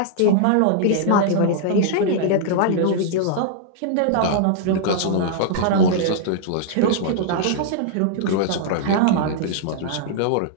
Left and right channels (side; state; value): both; different; correlation -0.01